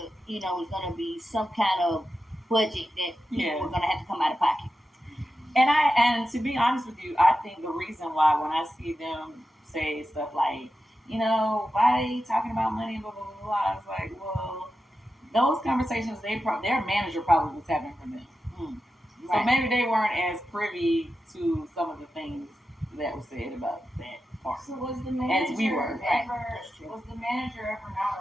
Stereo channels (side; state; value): both; normal; correlation 0.91